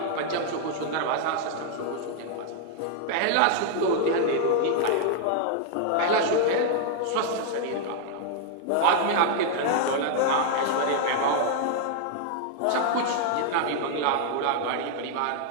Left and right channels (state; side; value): different; both; correlation 0.00